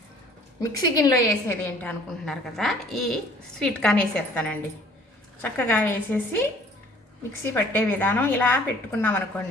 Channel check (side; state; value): both; normal; correlation 0.54